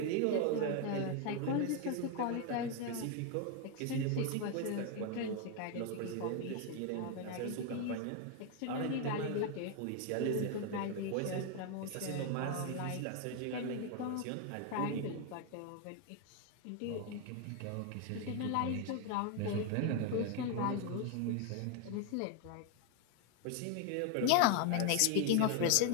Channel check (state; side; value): different; both; correlation 0.01